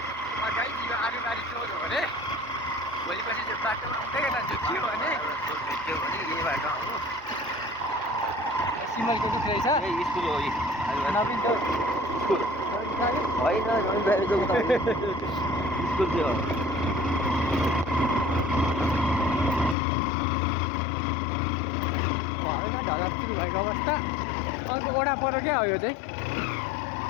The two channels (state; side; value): drops out; right; at 19.8 s